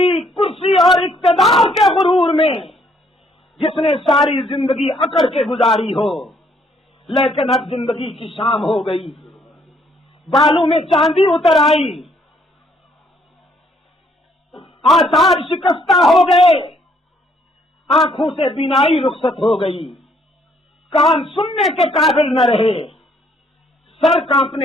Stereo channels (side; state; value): both; normal; correlation 0.67